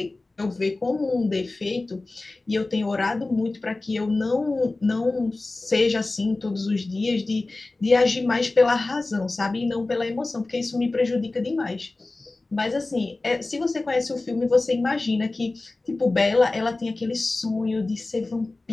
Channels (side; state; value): right; quieter; 3.2 dB